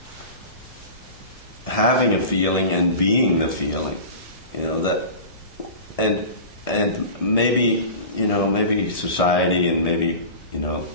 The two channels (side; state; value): right; late; 1.7 ms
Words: having a feeling and being the feeling. And maybe, maybe society and maybe,